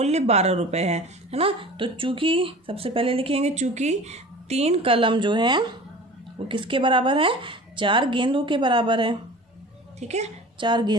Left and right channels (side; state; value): both; normal; correlation 0.40